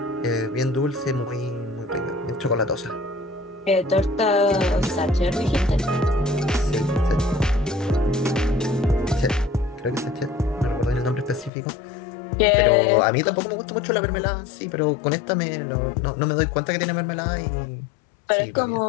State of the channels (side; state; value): right; drops out; at 11.5 s